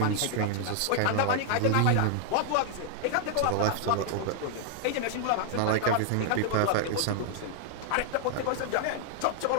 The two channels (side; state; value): both; different; correlation 0.00